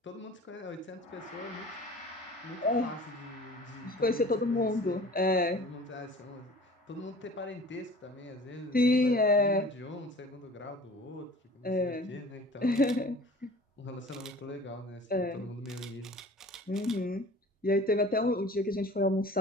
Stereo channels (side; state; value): both; normal; correlation 0.44